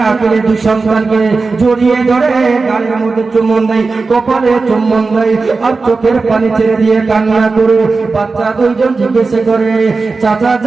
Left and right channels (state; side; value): quieter; left; 4.1 dB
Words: আকিলের দুই সন্তানকে জড়িয়ে ধরে গালের মধ্যে চুম্বন দেয়, কপালে চুম্বন দেয় আর চোখের পানি ছেড়ে দিয়ে কান্না করে। বাচ্চা দুইজন জিজ্ঞেস করে, চাচা